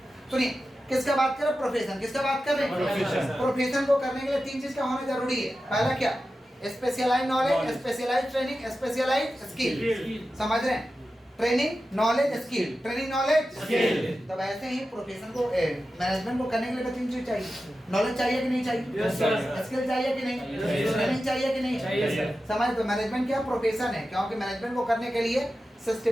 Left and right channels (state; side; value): normal; both; correlation 0.92